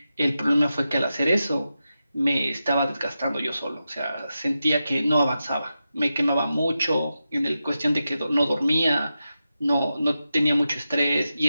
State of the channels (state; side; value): inverted; both; correlation -0.90